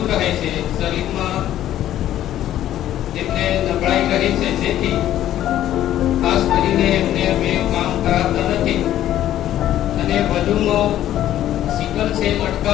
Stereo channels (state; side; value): quieter; right; 12.4 dB